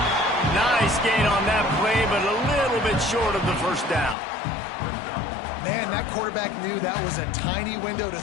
Nice gain on that play, but a little bit short of the first down. Man, that quarterback knew that was a tiny window to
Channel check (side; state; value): right; drops out; at 4.2 s